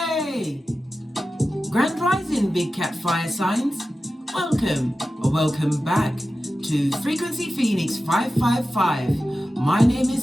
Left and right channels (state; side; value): normal; both; correlation 0.93